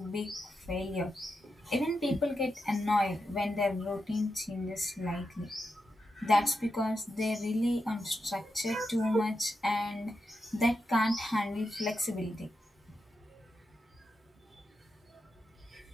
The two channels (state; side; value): normal; both; correlation 0.87